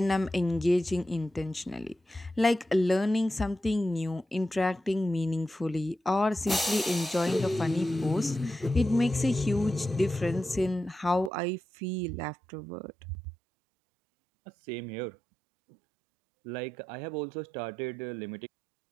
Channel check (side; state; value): left; drops out; at 11.3 s